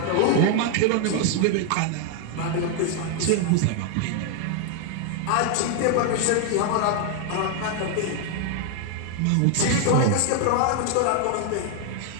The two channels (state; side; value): different; both; correlation 0.00